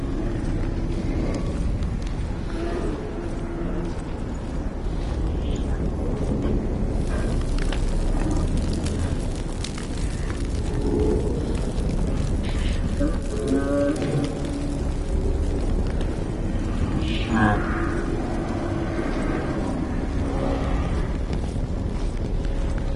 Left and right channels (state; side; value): identical; both; correlation 1.00